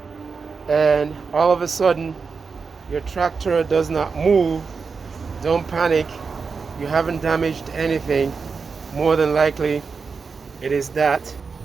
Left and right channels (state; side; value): quieter; left; 5.1 dB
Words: and all of a sudden your tractor does not move, don't panic. You haven't damaged anything. More than likely it is that